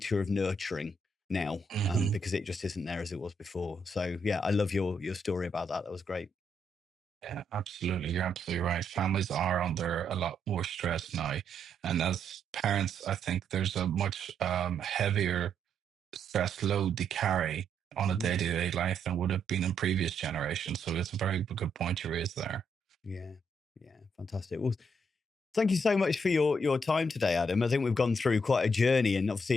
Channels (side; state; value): both; normal; correlation 0.75